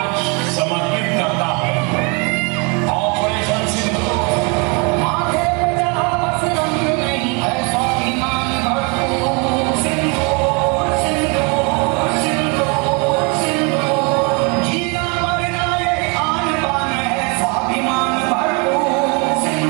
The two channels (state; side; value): quieter; left; 32.1 dB